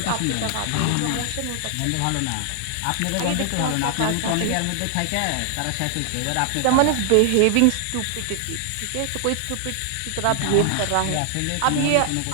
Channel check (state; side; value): different; both; correlation 0.00